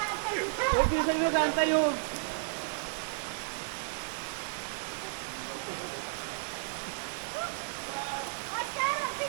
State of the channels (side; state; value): left; silent; digital silence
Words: Huwag yung sa'yo saan tayo. Oscar,